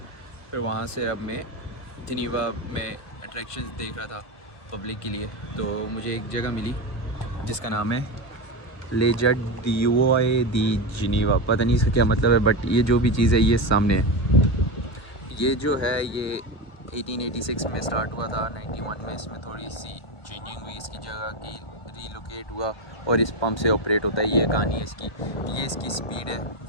फिर वहाँ से अब मैं जिनीवा में अट्रैक्शंस देख रहा था पब्लिक के लिए। तो मुझे एक जगह मिली जिसका नाम है लेजर डिओए दी जिनीवा। पता नहीं इसका क्या मतलब है, बट ये जो भी चीज़ है ये सामने है। ये जो है ये 1886 में स्टार्ट हुआ था, 91 में इसमें थोड़ी सी चेंजिंग हुई, इसकी जगह की रीलोकेट हुआ और इस पंप से ऑपरेट होता है। ये कहानी है इसकी। ये इसकी स्पीड है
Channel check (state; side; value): late; right; 1.2 ms